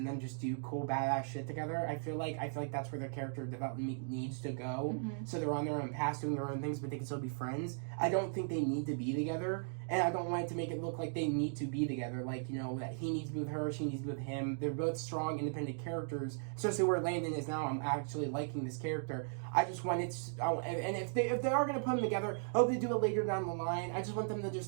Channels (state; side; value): silent; left; digital silence